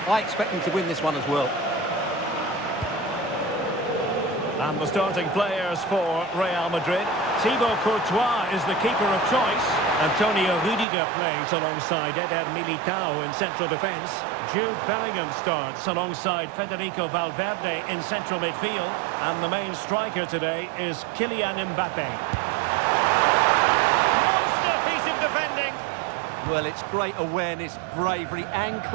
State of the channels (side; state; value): left; drops out; at 10.9 s